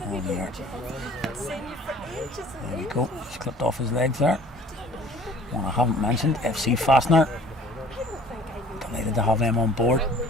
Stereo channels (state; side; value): normal; both; correlation 0.51